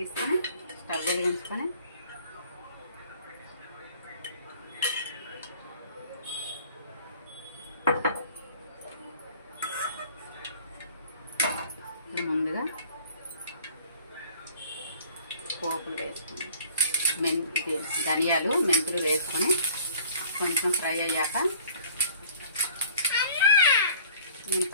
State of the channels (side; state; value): both; inverted; correlation -0.51